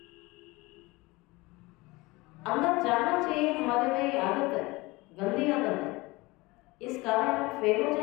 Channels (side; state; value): right; quieter; 22.7 dB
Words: अंदर जाना चाहिए, हमारे में ये आदत है, गंदी आदत है, इस कारण हम फेल हो